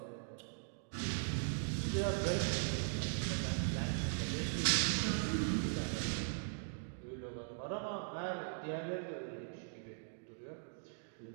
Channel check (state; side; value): silent; left; digital silence